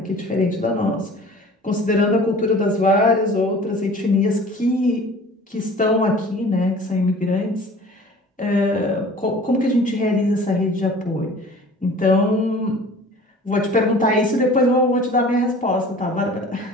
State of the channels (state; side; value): normal; both; correlation 0.45